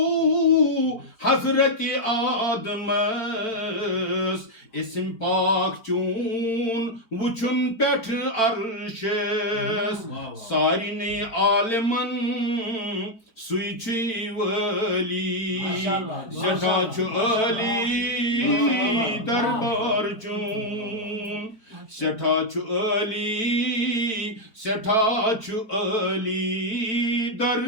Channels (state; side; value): late; right; 4.5 ms